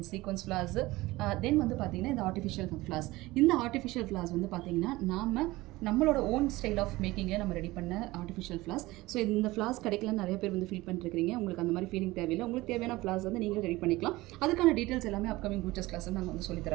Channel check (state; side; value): quieter; left; 19.5 dB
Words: சீக்வன்ஸ் ஃபிளார்ஸ், தென் வந்து பாத்தீங்கன்னா இந்த ஆர்டிஃபிஷியல் ஃபிளார்ஸ். இந்த ஆர்டிஃபிஷியல் ஃபிளார்ஸ் வந்து பாத்தீங்கன்னா நம்மளோட ஓன் ஸ்டைல் ஆஃப் மேக்கிங்கில் நம்ம ரெடி பண்ண ஆர்டிஃபிஷியல் ஃப்ளார்ஸ். ஸோ இந்த ஃப்ளார்ஸ் கிடைக்கலன்னு நிறைய பேர் வந்து ஃபீல் பண்ணிருக்கீங்க. உங்களுக்கு அந்த மாதிரி ஃபீலிங் தேவையில்லை. உங்களுக்கு தேவையான ஃப்ளார்ஸ் வந்து நீங்களே ரெடி பண்ணிக்கலாம். அதுக்கான டீட்டெயில்ஸ் எல்லாமே அப்கமிங் ப்ரூச்சஸ் கிளாஸ் நாங்கள் வந்து சொல்லி